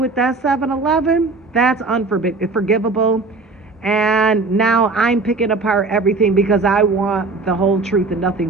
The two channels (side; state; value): left; quieter; 3.8 dB